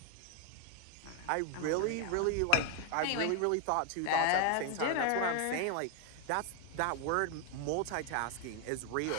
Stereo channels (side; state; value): both; different; correlation 0.00